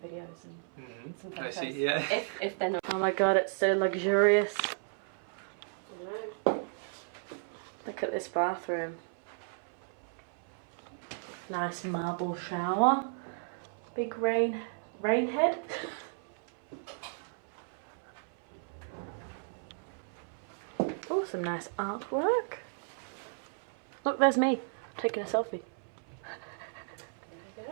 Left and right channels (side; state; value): left; silent; 55 dB below the other